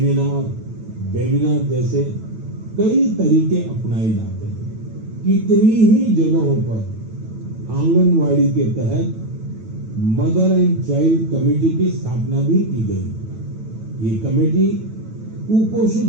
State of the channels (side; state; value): left; late; 9.1 ms